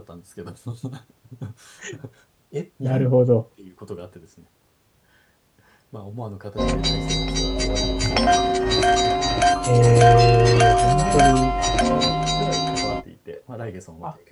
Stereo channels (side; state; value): both; identical; correlation 1.00